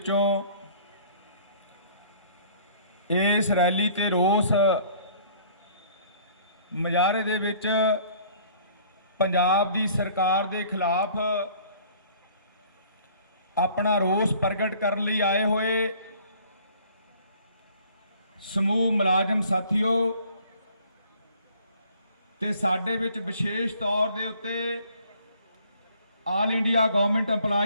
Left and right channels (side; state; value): both; inverted; correlation -0.55